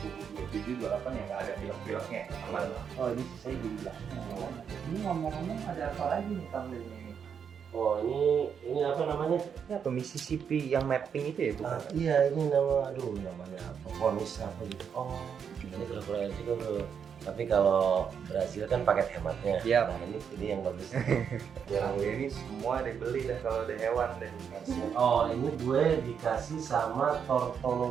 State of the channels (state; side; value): quieter; left; 7.3 dB